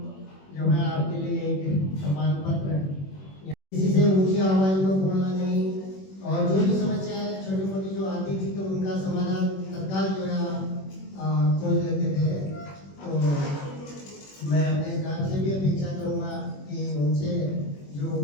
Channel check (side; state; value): right; late; 21 ms